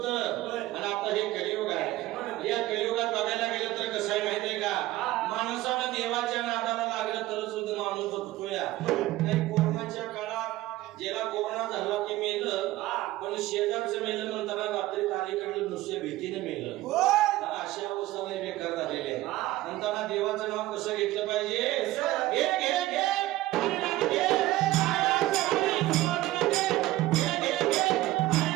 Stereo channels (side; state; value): left; quieter; 16.9 dB